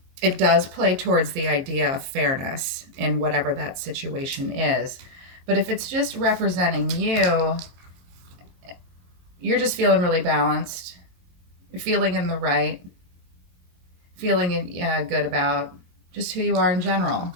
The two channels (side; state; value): left; late; 22 ms